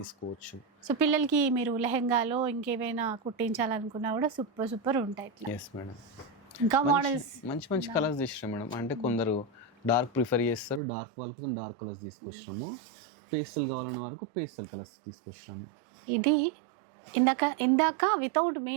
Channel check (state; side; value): drops out; left; at 10.8 s